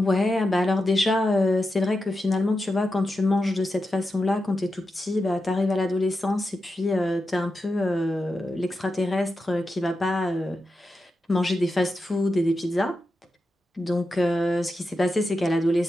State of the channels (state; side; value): normal; both; correlation 0.89